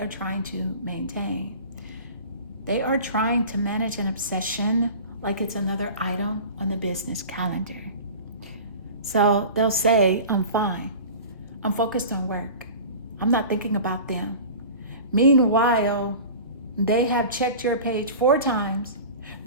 trying to maintain. They are trying to manage an obsession like it's another item on the business calendar. So they'll say, I'm fine. I'm focused on work. I'm not thinking about them. Meanwhile, they have checked your page 4 times,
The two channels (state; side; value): inverted; both; correlation -0.38